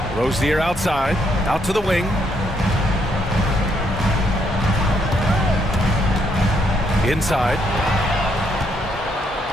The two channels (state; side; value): normal; both; correlation 0.73